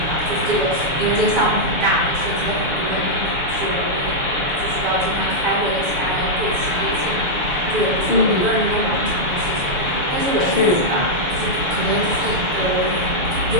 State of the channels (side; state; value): left; late; 6.8 ms